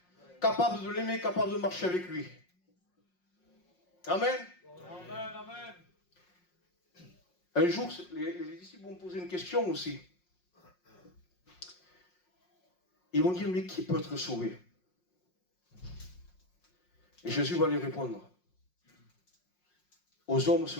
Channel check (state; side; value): late; right; 5.5 ms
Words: capable de l'aimer, capable de marcher avec lui. Amen. Amen, amen. Un jour, les disciples vont poser une question aussi. Ils vont dire, mais qui peut être sauvé? Et Jésus va lui répondre, aux hommes